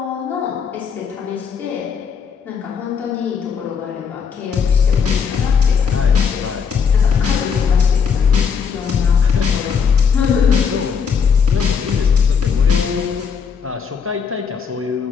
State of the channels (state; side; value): quieter; right; 6.4 dB